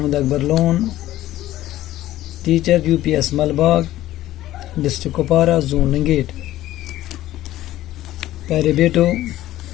Akbar Lone, teacher U P S Malbagh, district Kupwara, zone Langate. پیارے بیٹو،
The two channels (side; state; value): right; quieter; 14.7 dB